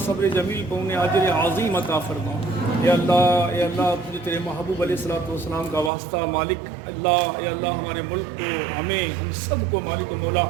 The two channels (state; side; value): drops out; left; at 5.9 s